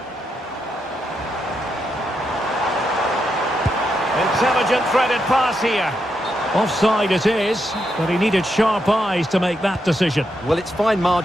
Intelligent threaded pass here. Offside it is, but he needed sharp eyes to make that decision. Well, it's fine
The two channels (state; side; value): normal; both; correlation 0.82